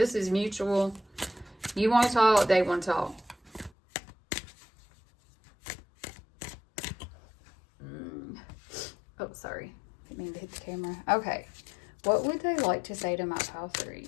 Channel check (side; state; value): right; drops out; at 3.7 s